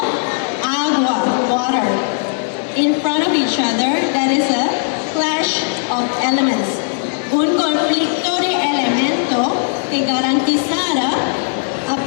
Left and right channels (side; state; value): right; silent; 59 dB below the other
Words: in front of each other, that is a clash of elements. Un conflicto de elemento que garantizará a